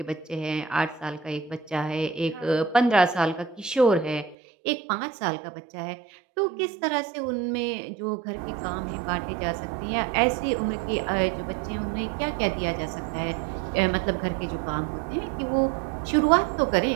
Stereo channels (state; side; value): drops out; left; at 4.4 s